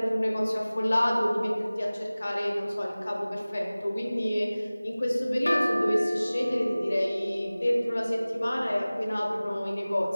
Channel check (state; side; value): inverted; both; correlation -0.99